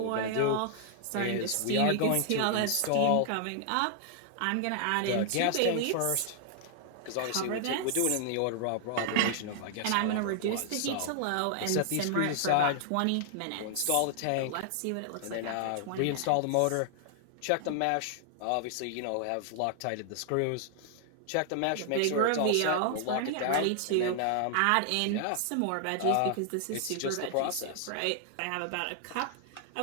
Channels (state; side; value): different; both; correlation 0.00